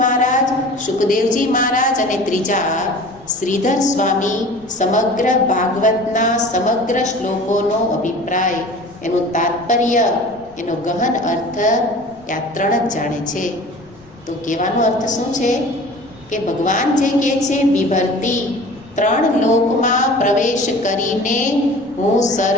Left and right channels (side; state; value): left; noise; rumble, 26 dB below the sound